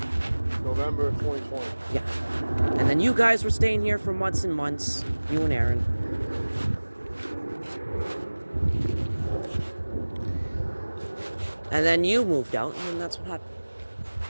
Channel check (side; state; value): both; inverted; correlation -1.00